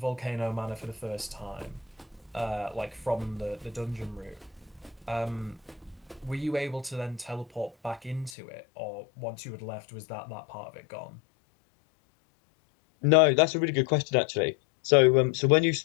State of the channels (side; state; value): right; drops out; at 8.3 s